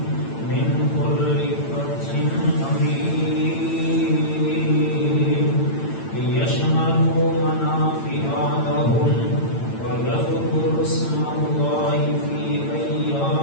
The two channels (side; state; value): right; late; 8.9 ms